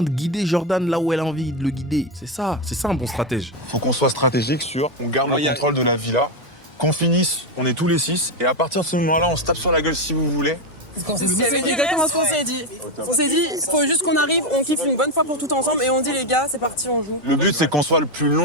de guider Jordan là où elle a envie de le guider. C'est ça un bon stratège. Faut qu'on soit stratégique sur on garde le contrôle de la villa, qu'on finisse, on est tous les 6, et à partir de ce moment-là, on se tape sur la gueule si vous voulez. C'est exactement ce qu'on s'est dit. On s'est dit, il faut juste qu'on arrive, on kiffe une bonne fois pour tout ensemble et on dit les gars, c'est parti, on joue. Le but, c'est qu'on soit le plus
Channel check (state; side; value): normal; both; correlation 0.09